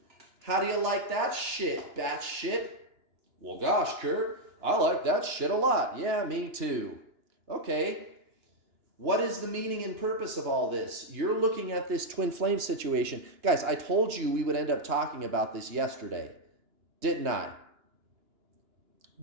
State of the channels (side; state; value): left; late; 2.9 ms